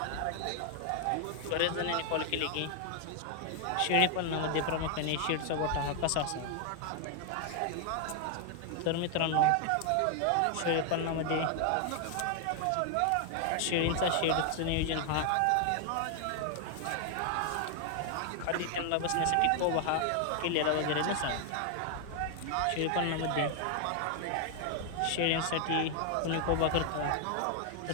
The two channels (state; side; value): different; both; correlation 0.00